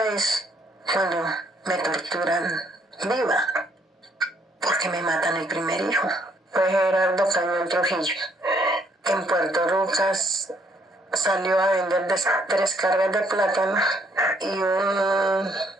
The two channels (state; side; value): normal; both; correlation 0.68